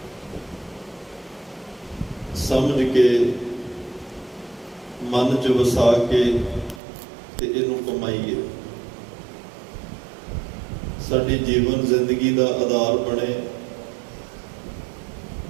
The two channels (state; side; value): drops out; left; at 6.8 s